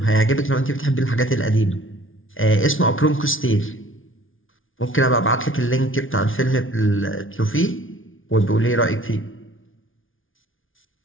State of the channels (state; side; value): late; right; 0.58 ms